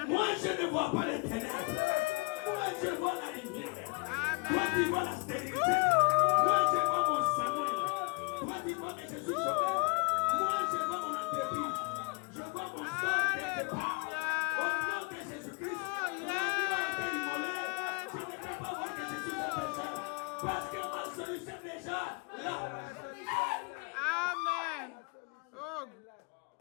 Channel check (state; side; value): quieter; right; 31.7 dB